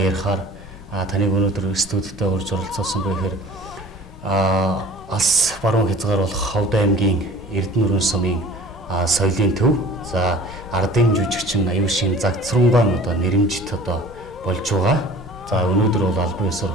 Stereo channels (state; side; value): normal; both; correlation 0.46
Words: ярихаар таныг өнөөдөр студидтэй урьж оролцуулсан бэ гэхээр алс баруун хязгаар болох Ховд аймгийн Эрдэнэ сумын соёлын төв за ардын жүжигчин Аюушийн Загцрунгаан одоо нэрэмжит одоо болж байгаа. За өнөөдөр бол албан